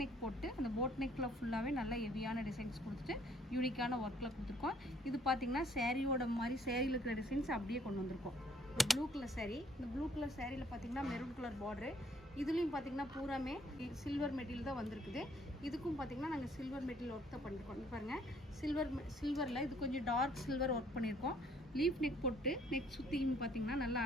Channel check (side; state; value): both; normal; correlation 0.63